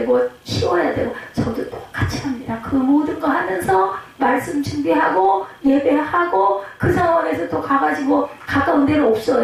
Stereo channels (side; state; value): both; identical; correlation 1.00